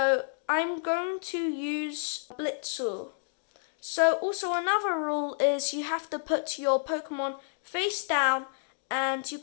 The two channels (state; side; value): silent; right; digital silence